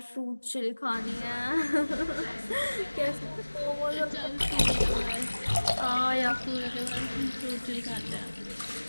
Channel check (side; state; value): both; inverted; correlation -1.00